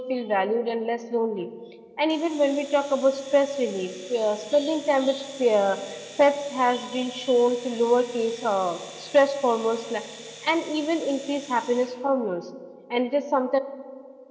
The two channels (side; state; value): both; identical; correlation 1.00